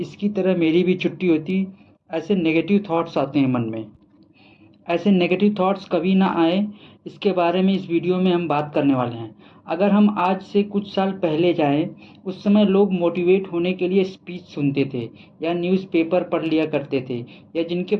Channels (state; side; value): identical; both; correlation 1.00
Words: तरह मेरी भी छुट्टी होती। ऐसे नेगेटिव थॉट्स आते हैं मन में। ऐसे नेगेटिव थॉट्स कभी ना आए, इसके बारे में इस वीडियो में हम बात करने वाले हैं। अगर हम आज से कुछ साल पहले जाएं, उस समय लोग मोटिवेट होने के लिए स्पीच सुनते थे या न्यूज़पेपर पढ़ लिया करते थे, या जिनके